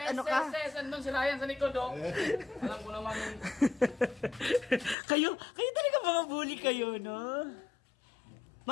ano ka? Andun si Ryan sa likod, oh. Alam ko naman. kayo talaga mga bully kayo, no?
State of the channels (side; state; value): right; drops out; at 5.0 s